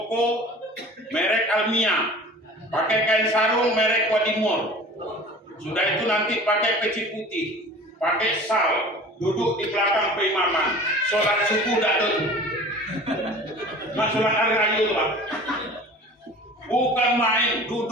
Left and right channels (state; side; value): normal; both; correlation 0.41